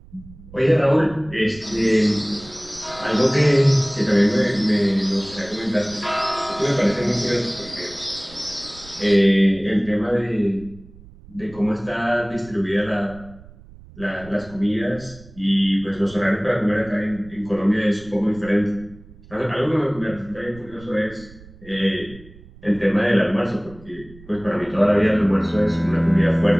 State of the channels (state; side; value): noise; right; rumble, 21 dB below the sound